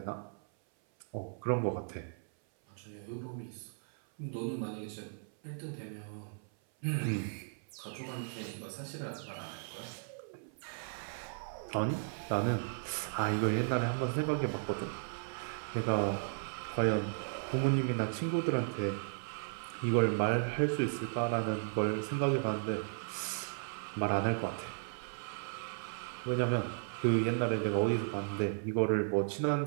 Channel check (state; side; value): silent; left; 54 dB below the other